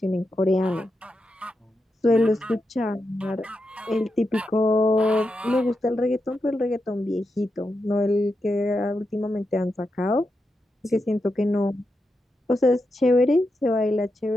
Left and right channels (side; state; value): both; normal; correlation 0.87